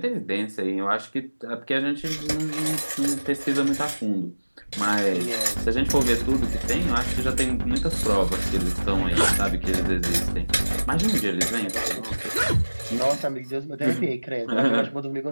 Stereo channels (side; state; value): both; inverted; correlation -1.00